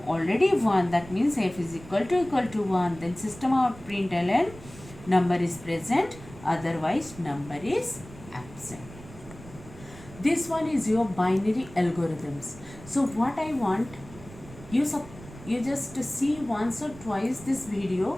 already 1, that means f is equal to 1, then system out println number is present, otherwise number is absent. This one is your binary algorithms. So what I want you just see once or twice this video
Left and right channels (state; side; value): noise; right; rumble, 17 dB below the sound